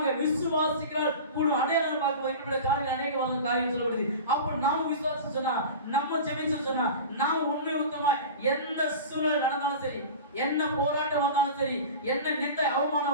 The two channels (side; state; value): both; inverted; correlation -0.32